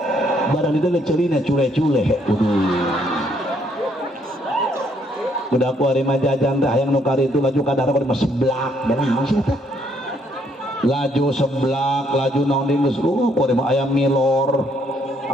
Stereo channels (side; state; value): both; normal; correlation 0.69